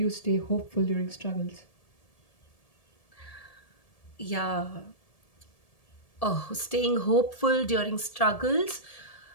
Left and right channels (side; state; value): right; late; 1.7 ms